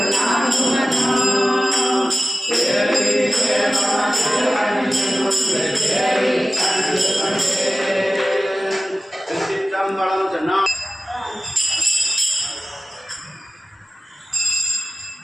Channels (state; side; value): normal; both; correlation 0.96